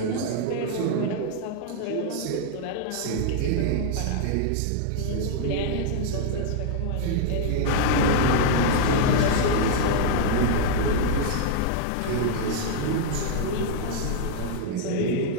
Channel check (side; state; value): both; different; correlation 0.00